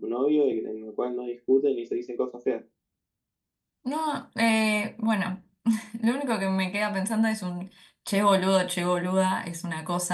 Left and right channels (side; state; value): both; identical; correlation 1.00